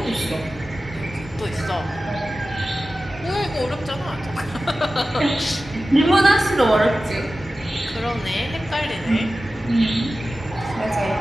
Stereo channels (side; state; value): both; normal; correlation 0.95